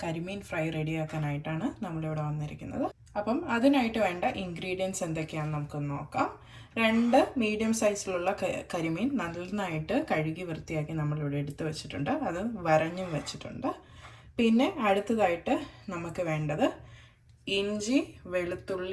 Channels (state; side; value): identical; both; correlation 1.00